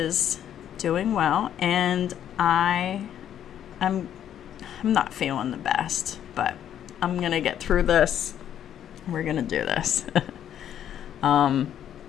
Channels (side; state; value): right; quieter; 10.2 dB